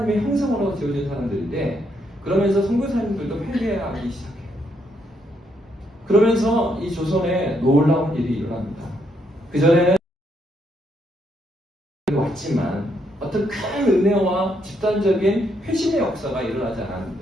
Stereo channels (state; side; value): normal; both; correlation 0.75